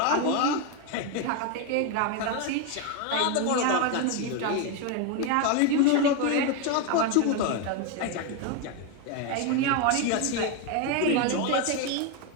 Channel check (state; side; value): different; both; correlation 0.02